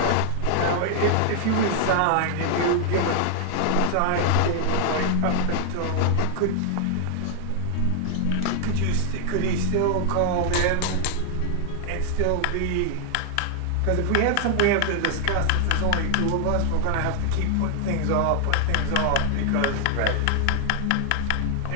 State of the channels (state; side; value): different; both; correlation 0.00